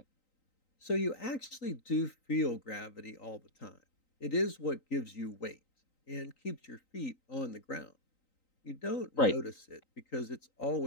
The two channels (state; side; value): late; right; 3.9 ms